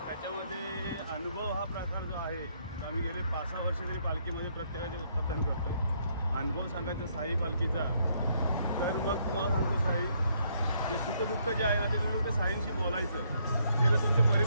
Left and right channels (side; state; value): both; inverted; correlation -0.70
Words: त्याच्यामध्ये अनुभव हा प्रकार जो आहे तो आम्ही गेले 5-6 वर्ष तरी पालखीमध्ये प्रत्येकाचे पतन करतो. अनुभव सांगायचा साई पालखीचा तर मग तुम्हाला सांगतो, साई जे सुखदुःख जे आहे ना ते तुम्ही ते साईंशी बोलायचं. ते जर तुमचे